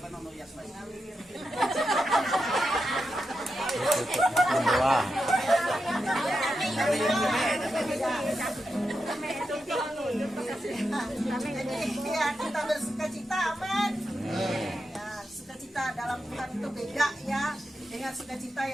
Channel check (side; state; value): both; normal; correlation 0.88